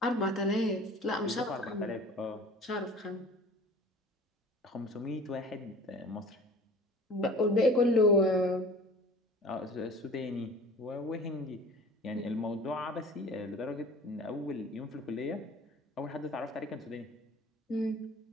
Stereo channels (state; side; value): normal; both; correlation 0.43